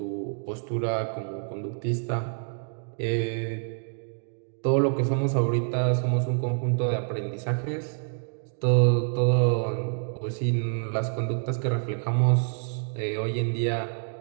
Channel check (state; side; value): silent; left; 60 dB below the other